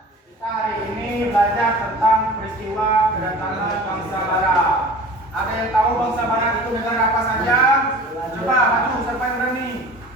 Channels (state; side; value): normal; both; correlation 0.41